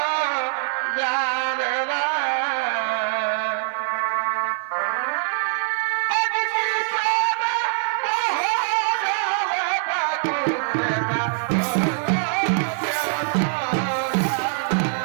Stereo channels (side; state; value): left; silent; 58 dB below the other